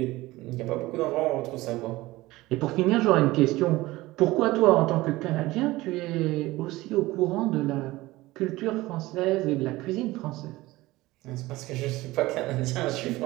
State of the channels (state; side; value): quieter; left; 19.0 dB